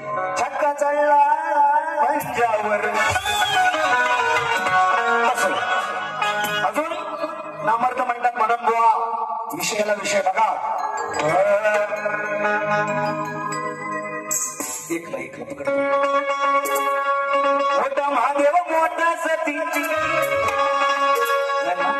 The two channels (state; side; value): identical; both; correlation 1.00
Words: छक्का चढला पंजावर अजून नामर्थ म्हणतात म्हणून बुवा विषयाला विषय बघा एकला पकड मोठा महादेव मोठा सतीची